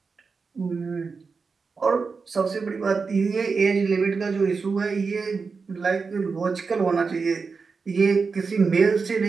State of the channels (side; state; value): left; quieter; 4.8 dB